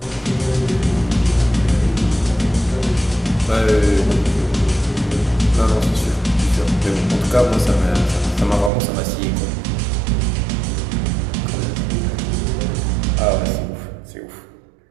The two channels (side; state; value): left; drops out; at 8.7 s